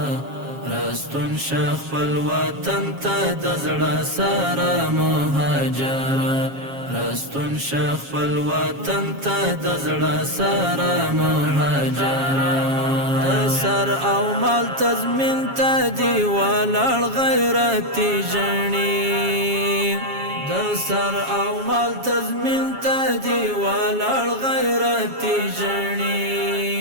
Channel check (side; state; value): left; late; 7.3 ms